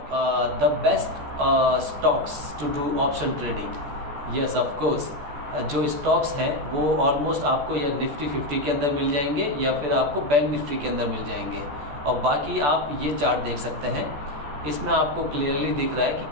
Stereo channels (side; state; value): left; late; 14 ms